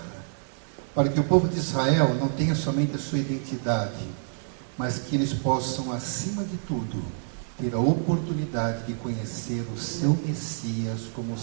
para que o povo de Israel não tenha somente a sua identidade, mas que eles possam, acima de tudo, ter a oportunidade de conhecer o seu Messias como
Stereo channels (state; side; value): silent; left; digital silence